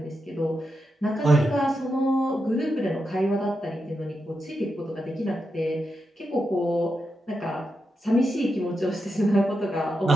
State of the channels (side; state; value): both; normal; correlation 0.86